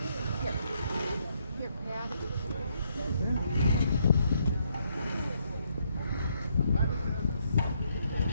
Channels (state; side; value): inverted; both; correlation -0.73